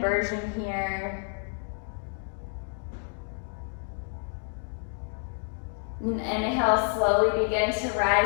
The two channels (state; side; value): silent; right; 59 dB below the other